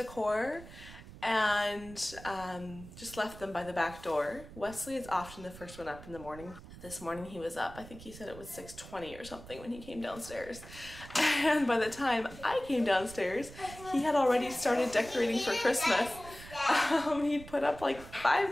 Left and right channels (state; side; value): noise; right; rumble, 16 dB below the sound